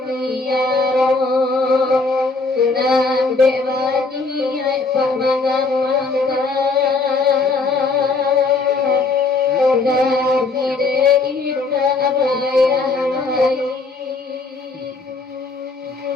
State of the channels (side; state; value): right; quieter; 3.8 dB